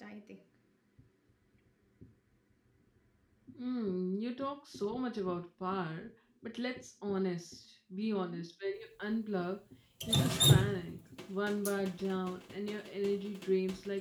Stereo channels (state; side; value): identical; both; correlation 1.00